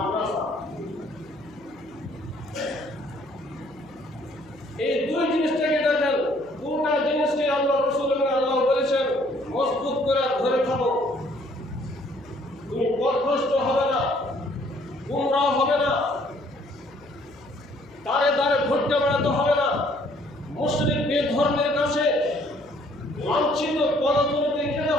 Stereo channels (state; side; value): noise; left; hum, 26 dB below the sound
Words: এই দুই জিনিসটাকে দেখেন, দুটা জিনিসকে আল্লাহ রাসূল এবং আল্লাহ বলেছেন মজবুত করে ধরে থাকো। তুমি পথভ্রষ্ট হবে না, গুমরাহ হবে না, দাঁড়ে দাঁড়ে ঘুরতে বেড়াতে হবে না, মুশরিক বেধর্মের কাছে লাঞ্ছিত পদতুলিতে খেতে